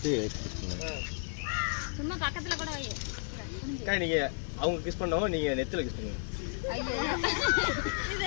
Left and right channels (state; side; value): silent; right; 56 dB below the other